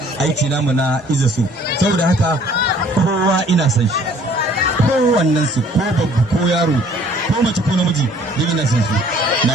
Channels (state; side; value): normal; both; correlation 0.57